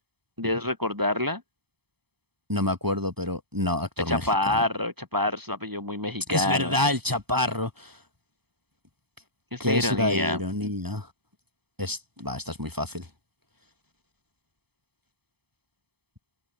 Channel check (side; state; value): left; late; 0.98 ms